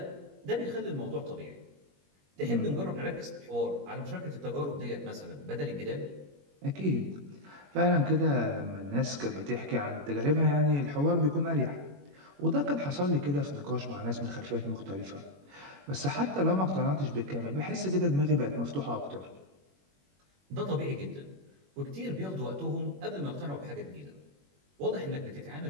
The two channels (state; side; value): late; left; 21 ms